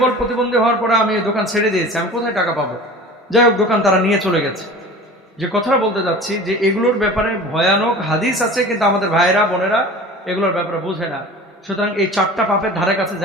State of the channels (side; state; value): both; normal; correlation 0.39